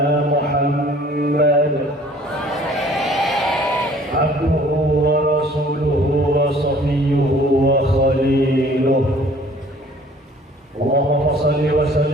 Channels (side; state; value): both; normal; correlation 0.54